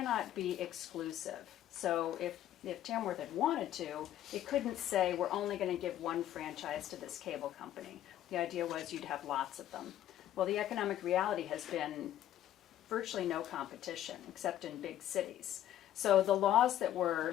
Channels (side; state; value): right; quieter; 12.2 dB